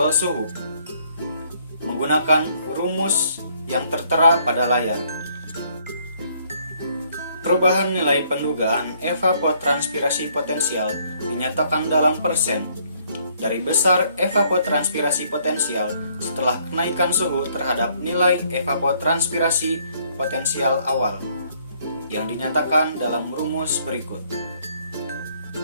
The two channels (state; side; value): inverted; both; correlation -0.66